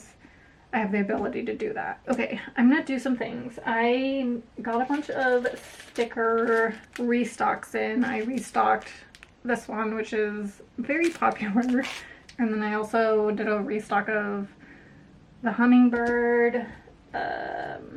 I have the ability to do that. Okay, I'm gonna do some things. I got a bunch of sticker restocks in. I restocked this one, which is very popular. And then I also did a restock of the hummingbird,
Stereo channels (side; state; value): both; identical; correlation 1.00